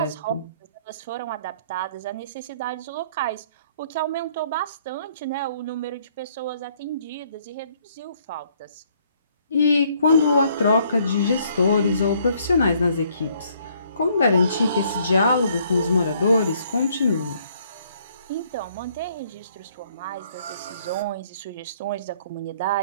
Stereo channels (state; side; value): inverted; both; correlation -0.65